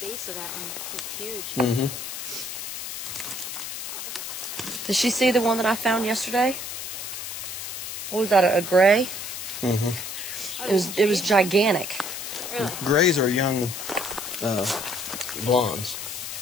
of that one. It's huge. Mm-hmm. Did she see the one that I found yesterday? What was that? A gray? Mm-hmm. It was gigantic. Really? Grays are young blondes.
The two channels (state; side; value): noise; left; hiss, 7 dB below the sound